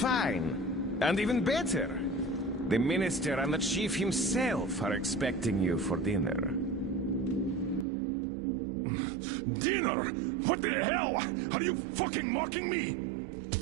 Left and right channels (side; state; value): left; drops out; at 7.9 s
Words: And even better. The minister and the chief himself are expecting you for dinner. Dinner? What the hell? Are you fucking mocking me?